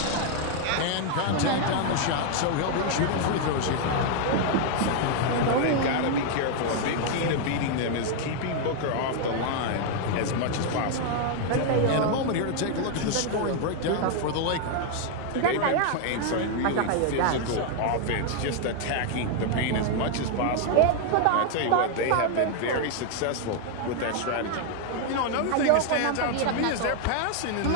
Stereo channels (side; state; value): both; different; correlation 0.00